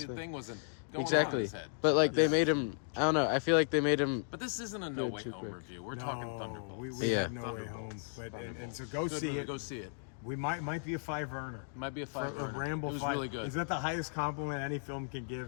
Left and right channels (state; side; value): silent; right; digital silence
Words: the thing wasn't going on his head. But like they made him. I don't know. I feel like they made him. But this isn't a No Way Home review. We're talking Thunderbolts. We had No Way Home, but and so go see it. Go see it. We might be a 5 earner. Might be a 5 A Ramble it was 5. really good. Is that the highest compliment any film can